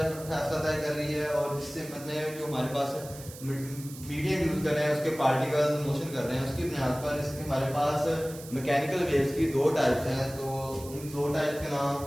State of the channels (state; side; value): noise; right; hiss, 16 dB below the sound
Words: तय कर रही है और जिस सिमत में जो हमारे पास मीडियम यूज कर रहे हैं उसके पार्टिकल्स मोशन कर रहे हैं, उसकी बुनियाद पर इसके हमारे पास मैकेनिकल वेव्स की दो टाइप्स हैं। तो उन दो टाइप्स के नाम